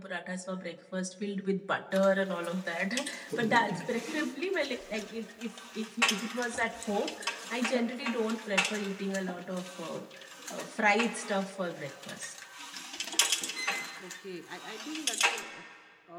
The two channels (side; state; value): both; identical; correlation 1.00